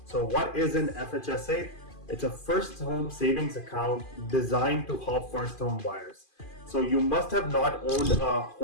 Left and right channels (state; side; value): late; right; 2.4 ms